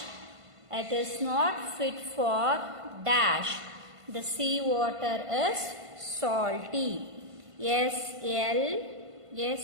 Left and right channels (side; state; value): left; late; 1.5 ms